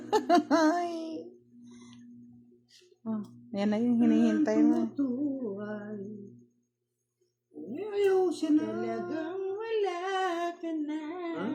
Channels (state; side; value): identical; both; correlation 1.00